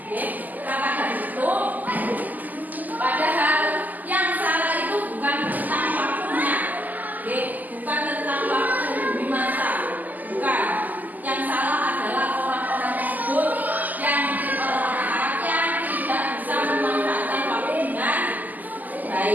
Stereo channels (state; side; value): late; left; 0.082 ms